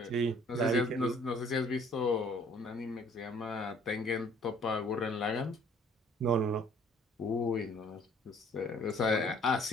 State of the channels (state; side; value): normal; both; correlation 0.57